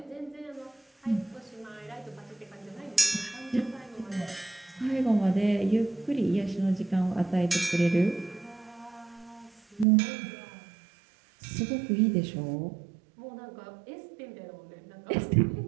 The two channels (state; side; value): drops out; left; at 9.9 s